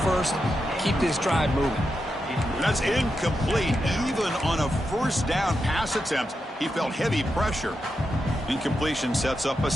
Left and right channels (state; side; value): normal; both; correlation 0.87